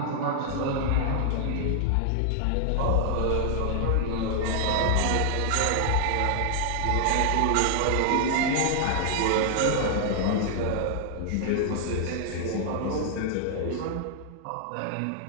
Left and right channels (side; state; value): both; different; correlation 0.00